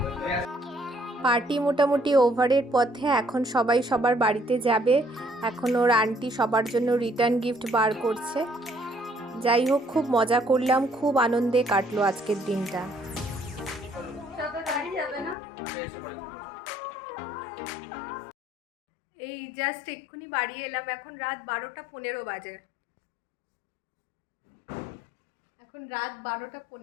পার্টি মোটামুটি ওভারের পথে, এখন সবাই সবার বাড়িতে যাবে। এখন ওর আন্টি সবার জন্য রিটার্ন গিফট বার করছে। যাই হোক, খুব মজা করলাম, খুব আনন্দে কাটলো আজকের দিনটা। সবে বাড়ি যাবে না? এই জাস্ট এক্ষুনি বাড়ি এলাম, এখন রাত 12:15 বাজে। এখন রাত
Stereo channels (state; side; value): drops out; right; at 15.4 s